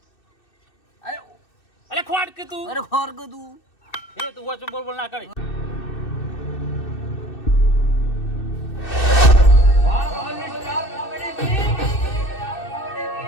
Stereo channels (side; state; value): right; late; 2.6 ms